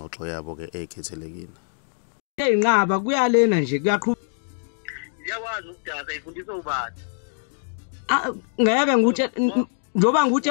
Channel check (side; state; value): right; silent; digital silence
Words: yabo ke ekhethelekile. Eyinqaba kuyalena nje kuyaqhubeka. Ngiyakwazi ukudada ifundisa ubani. Ngeke nguthe njoba nguthi